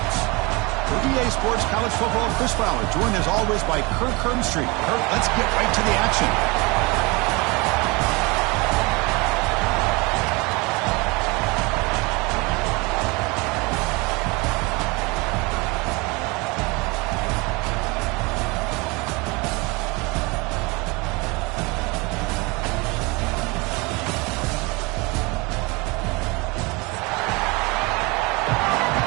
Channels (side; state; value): left; quieter; 26.3 dB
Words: For EA Sports College Football, Chris Fowler, joined as always by Kirk Herbstreit. Kirk, let's get right to the action.